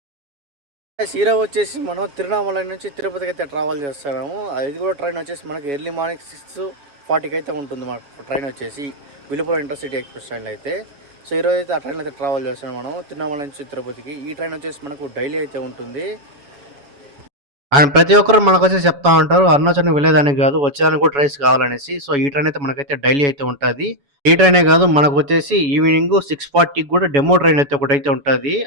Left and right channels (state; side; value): late; left; 7.1 ms